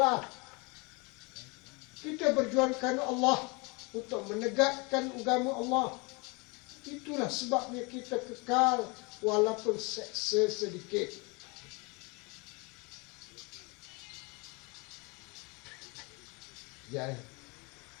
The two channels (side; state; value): right; quieter; 29.0 dB